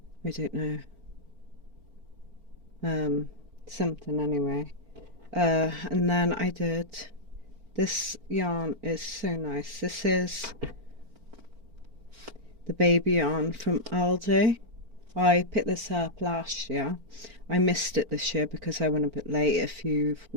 I don't know, something anyway. And then I did, this yarn is so nice. This is the baby yarn from Aldi. I picked this up last year. I missed it this year because I went a bit late. If you've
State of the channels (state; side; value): late; left; 4.4 ms